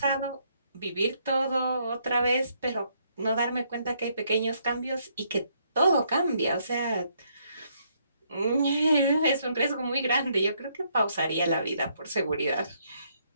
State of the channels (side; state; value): both; inverted; correlation -0.72